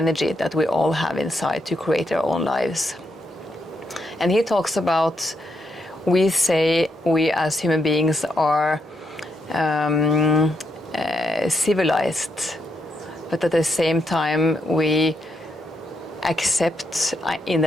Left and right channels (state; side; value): normal; both; correlation 0.80